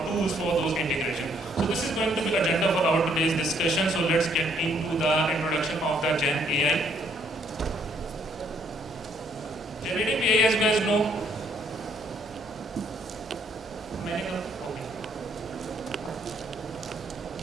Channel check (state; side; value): normal; both; correlation 0.67